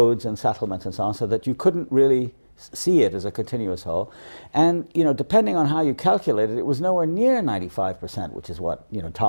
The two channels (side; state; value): both; inverted; correlation -1.00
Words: and settlements and so on, so that you couldn't really see it as a continuous whole. And, you know, depending on how you calculate it, it was nowhere near 95%, which is what, you know,